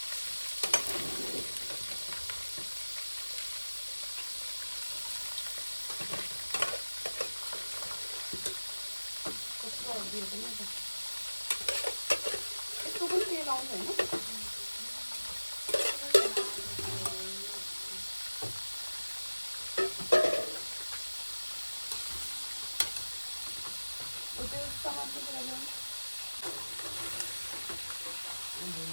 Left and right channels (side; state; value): both; inverted; correlation -1.00